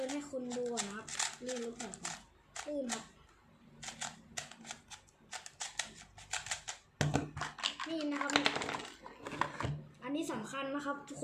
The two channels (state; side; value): identical; both; correlation 1.00